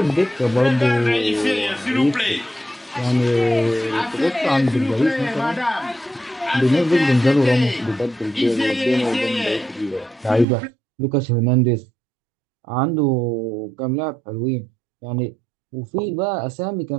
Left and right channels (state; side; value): drops out; left; at 10.5 s